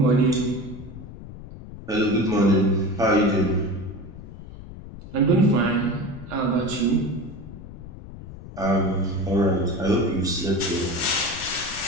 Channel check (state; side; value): noise; left; rumble, 14 dB below the sound